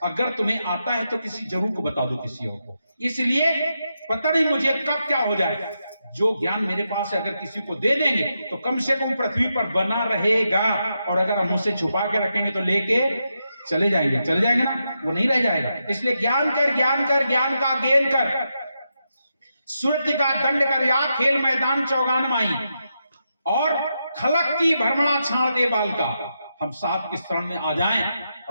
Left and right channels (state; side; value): inverted; both; correlation -0.85